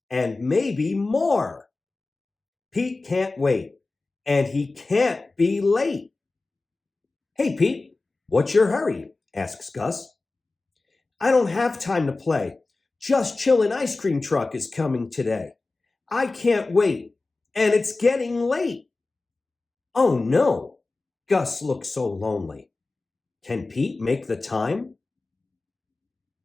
and maybe more. Pete can't wait, and he can't be late. Hey, Pete, what's your hurry? Asks Gus. I don't have time to play. Just Chillin' ice cream truck is coming today. I can't wait, and it's getting late. Oh no! Gus looks so lonely. Can Pete make the time?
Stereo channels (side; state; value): right; quieter; 3.4 dB